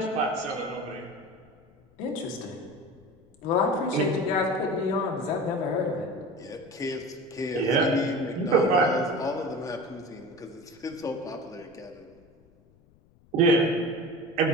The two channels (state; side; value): noise; left; rumble, 30 dB below the sound